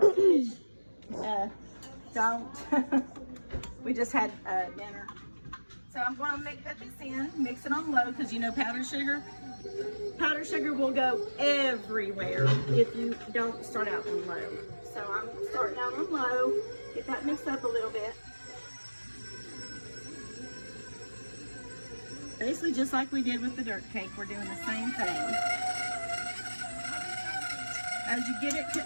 don't. We just had dinner. So I'm going to put this in, mix it on low, because you know powdered sugar will go everywhere if you don't start out on low. So I'm starting out on low, get that mixed up a little bit. Basically just like we did with the dirt cake, we're doing the same thing. As you get it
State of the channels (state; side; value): inverted; both; correlation -1.00